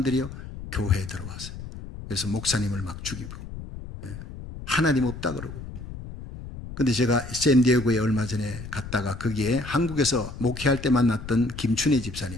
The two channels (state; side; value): noise; left; rumble, 11 dB below the sound